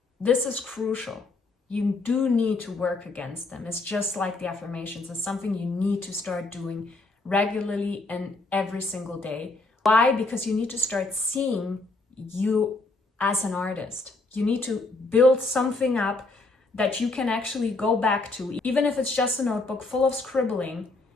This is crucial. You do need to work against them. It's just like the affirmations. It's something you need to start doing regularly and every single day. Why? Because you need to start seeing you as an artist. You need to build something up that you can actually go back to. Even if it's just a notebook full of scribbling,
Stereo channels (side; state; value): right; quieter; 3.2 dB